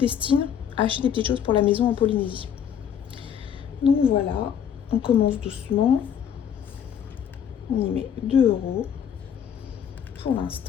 à acheter des petites choses pour la maison en Polynésie. Donc voilà, on commence doucement. On y met 2 € pour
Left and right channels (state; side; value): quieter; right; 8.5 dB